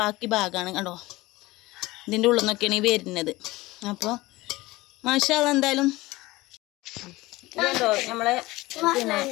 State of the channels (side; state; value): right; quieter; 19.8 dB